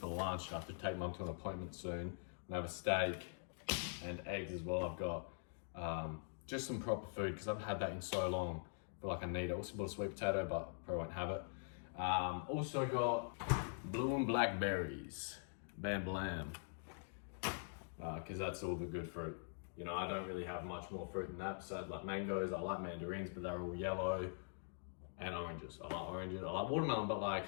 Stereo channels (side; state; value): right; silent; digital silence